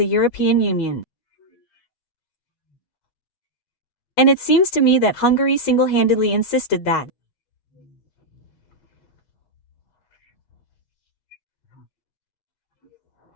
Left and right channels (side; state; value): right; late; 8.3 ms